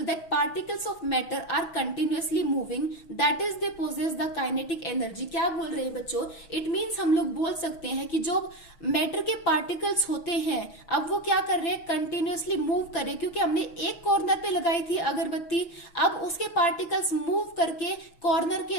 that particles of matter are continuously moving, that is they possess the kinetic energy। क्या बोल रहे हैं बच्चों? It means हम लोग बोल सकते हैं कि जो मैटर के पार्टिकल्स होते हैं, अब वो क्या कर रहे हैं, कंटिन्यूअसली मूव कर रहे हैं, क्योंकि हमने एक कॉर्नर पे लगाई थी अगरबत्ती, अब उसके पार्टिकल्स मूव करके कॉर्नर के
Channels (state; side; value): late; right; 6.2 ms